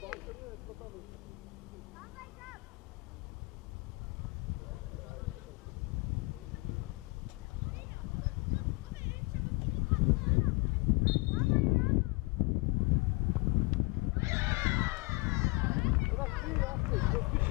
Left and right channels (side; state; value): right; quieter; 26.4 dB